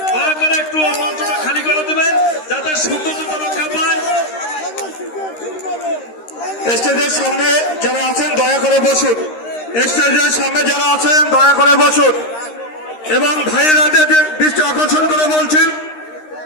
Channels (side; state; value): right; late; 13 ms